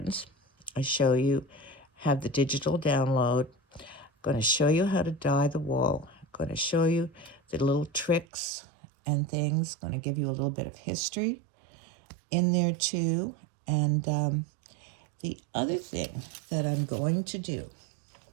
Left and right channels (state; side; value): drops out; left; at 8.2 s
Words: I show you, have the digital download. I'm going to show you how to dye the wool. I'm going to show you the little tricks and things. I'm going to give you a little bit of history in there too. And the other thing that I'm going to do,